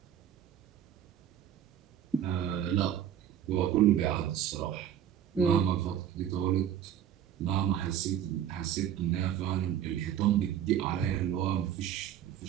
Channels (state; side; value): quieter; left; 10.0 dB